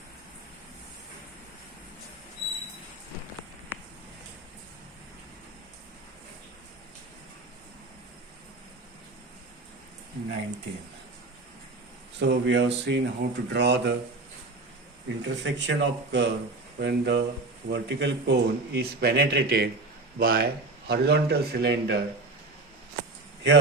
So we have seen how to draw the intersection of curve when the vertical cone is penetrated by horizontal cylinder.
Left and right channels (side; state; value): left; quieter; 3.2 dB